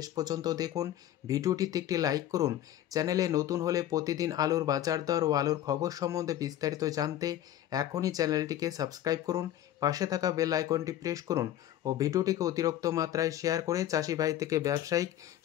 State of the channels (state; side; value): quieter; right; 12.2 dB